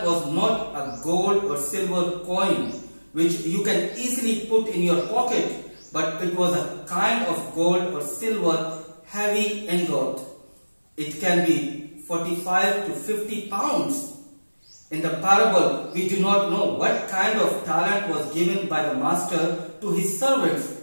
was not a gold or silver coin which you can easily put in your pocket, but it was a kind of gold or silver heavy ingot. It can be 45 to 50 pounds. In the parable, we do not know what kind of talent was given by the master to his servants.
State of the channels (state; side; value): inverted; both; correlation -1.00